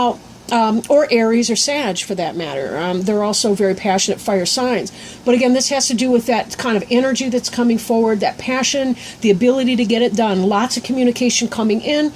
or Aries or Sag for that matter. They're also very passionate fire signs. But again, this has to do with that kind of energy that's coming forward, that passion, the ability to get it done. Lots of communication coming in,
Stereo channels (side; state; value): both; identical; correlation 1.00